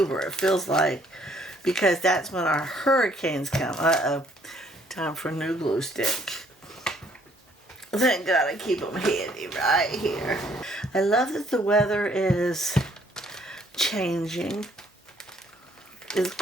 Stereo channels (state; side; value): normal; both; correlation 0.64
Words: it feels like, because that's when our hurricanes come. Uh-oh. Time for a new glue stick. Thank God I keep them handy right here. I love that the weather is changing. It's